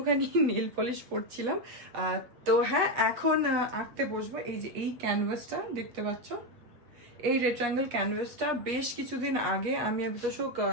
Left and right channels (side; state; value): left; late; 8.2 ms